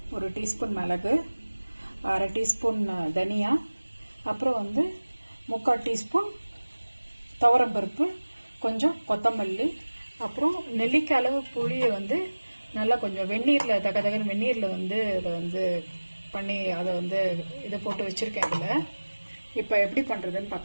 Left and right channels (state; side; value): inverted; both; correlation -1.00